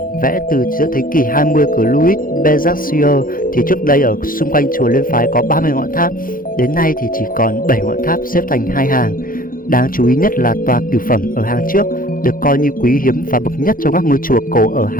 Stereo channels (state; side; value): late; right; 0.41 ms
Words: vẽ từ giữa thế kỷ 20 của Louis Béranger thì trước đây ở xung quanh chùa Liên Phái có 30 ngọn tháp, đến nay thì chỉ còn 7 ngọn tháp xếp thành hai hàng. Đáng chú ý nhất là tòa cửu phẩm ở hàng trước, được coi như quý hiếm và bậc nhất trong các ngôi chùa cổ ở